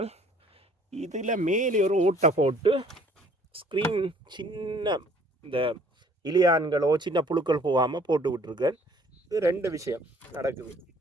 இதில் மேலே ஒரு ஓட்டை போட்டு ஸ்க்ரீன் சின்ன இந்த இலியான்களோ சின்ன புழுக்கள் போகாமல் போட்டு விட்டுருக்கேன். இது ரெண்டு விஷயம் நடக்குது.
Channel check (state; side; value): normal; both; correlation 0.57